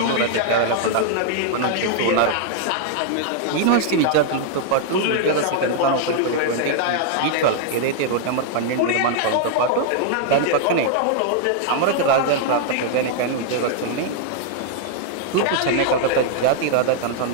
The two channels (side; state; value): both; different; correlation 0.00